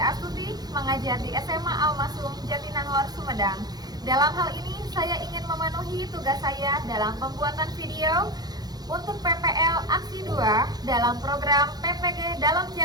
mengajar di SMA Al-Masum Jatinangor, Sumedang. Dalam hal ini, saya ingin memenuhi tugas saya dalam pembuatan video untuk PPL Aksi 2 dalam program PPG Dalam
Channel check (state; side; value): late; left; 0.19 ms